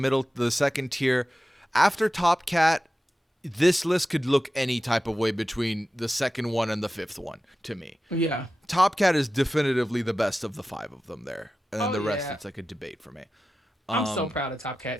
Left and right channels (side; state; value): both; normal; correlation 0.93